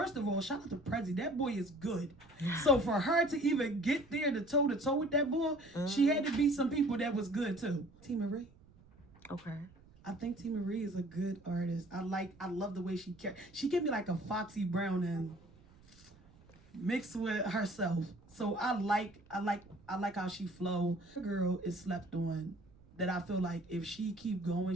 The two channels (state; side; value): noise; right; rumble, 25 dB below the sound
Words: of all, shout out to Prezi. That boy is good. So for her to even get there to toe with that boy, she had to beat some people that was good too. T. Marie. Okay. I think T. Marie is a good artist. I love the way she give me like a Foxy Brown and mixed with herself. So I like how she flow. Her girl is slept on. That I feel like if she keep going,